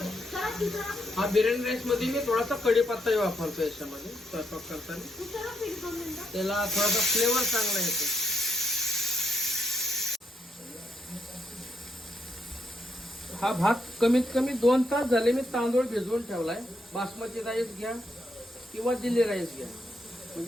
हा बिर्याणी राईस मध्ये मी थोडासा कढीपत्ताही वापरतो याच्यामध्ये स्वयंपाक करताना. त्याला थोडासा फ्लेवर चांगला येतो. हा भात कमीत कमी 2 तास झाले मी तांदूळ भिजवून ठेवलाय. बासमती राईस घ्या किंवा दिल्ली राईस घ्या,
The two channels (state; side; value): normal; both; correlation 0.78